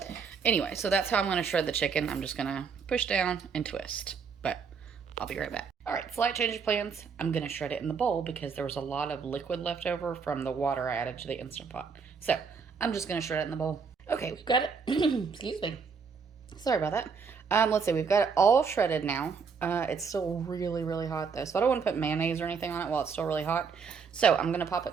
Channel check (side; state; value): left; quieter; 5.7 dB